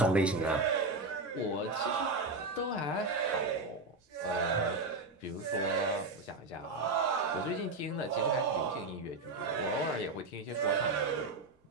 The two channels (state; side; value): quieter; left; 3.5 dB